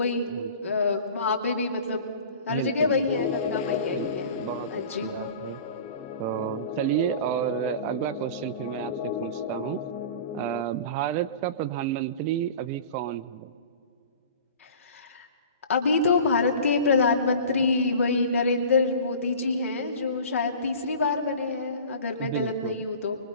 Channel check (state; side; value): inverted; both; correlation -0.39